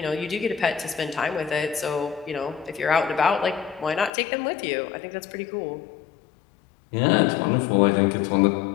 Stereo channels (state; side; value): drops out; right; at 4.1 s